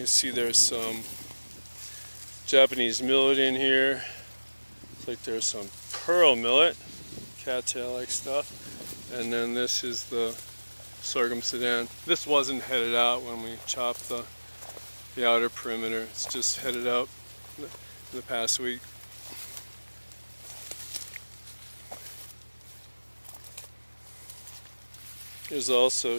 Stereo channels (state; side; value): inverted; both; correlation -1.00